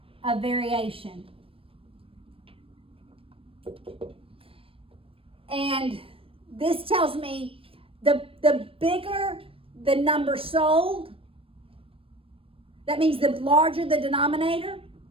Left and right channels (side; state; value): left; late; 0.27 ms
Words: of variation. And this tells me the bigger the number sold, that means the larger the denominator,